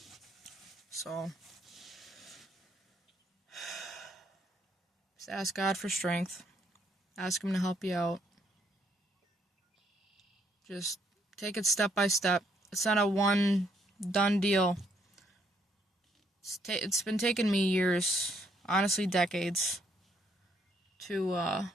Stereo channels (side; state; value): both; normal; correlation 0.71